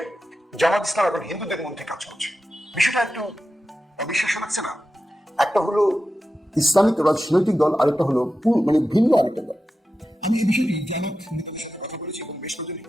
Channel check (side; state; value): both; normal; correlation 0.92